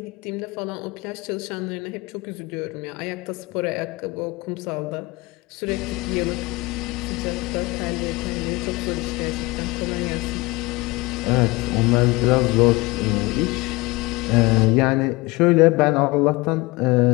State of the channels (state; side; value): quieter; right; 23.1 dB